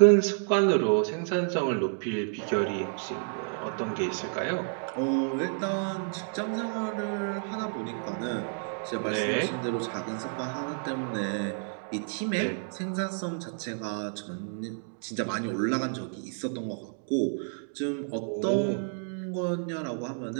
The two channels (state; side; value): silent; left; 58 dB below the other